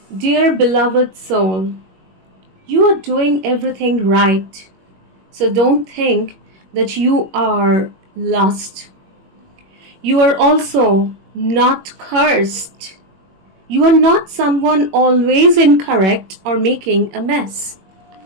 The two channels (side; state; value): left; late; 21 ms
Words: Dear beloved soul, you are doing everything right. So don't think that you are lost. You are also not cursed. You are not someone always incorrect or making a mess.